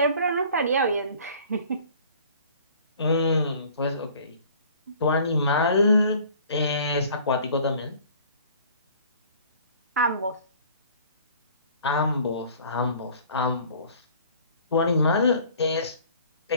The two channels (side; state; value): both; inverted; correlation -0.51